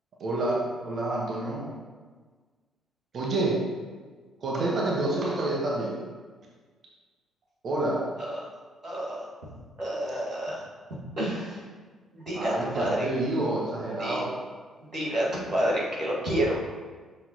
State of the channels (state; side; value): normal; both; correlation 0.66